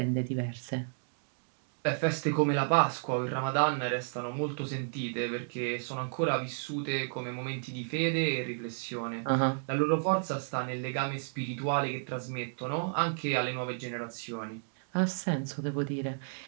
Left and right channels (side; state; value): left; silent; digital silence